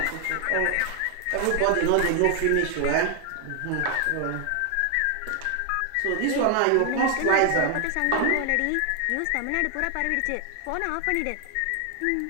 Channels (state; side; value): different; both; correlation 0.00